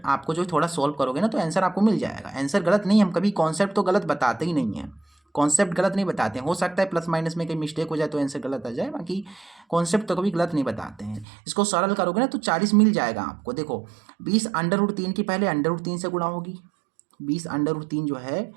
आपको जो थोड़ा सॉल्व करोगे ना तो आंसर आपको मिल जाएगा। आंसर गलत नहीं, हम कभी कॉन्सेप्ट तो गलत बताते ही नहीं है, कॉन्सेप्ट गलत नहीं बताते हैं। हो सकता है प्लस माइनस में कहीं मिस्टेक हो जाए तो आंसर गलत आ जाए, बाकी कॉन्सेप्ट तो कभी गलत नहीं बताते हैं। इसको सरल करोगे ना तो 40 मिल जाएगा आपको। देखो 20 √3 की पहले √3 से गुणा होगी, 20 √3 जो है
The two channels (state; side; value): drops out; left; at 11.2 s